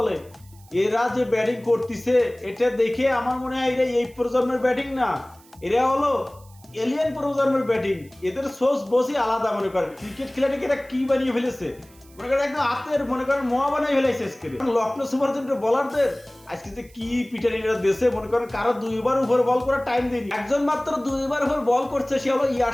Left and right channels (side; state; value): right; noise; hiss, 27 dB below the sound